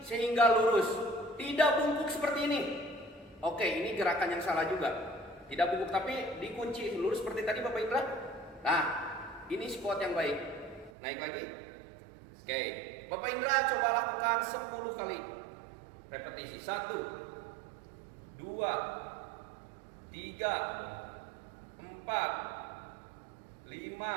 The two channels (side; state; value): left; drops out; at 10.9 s